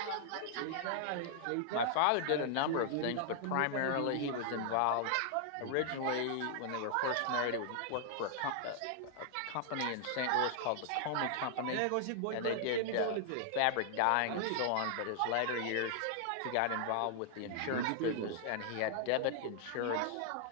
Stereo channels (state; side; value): different; both; correlation -0.01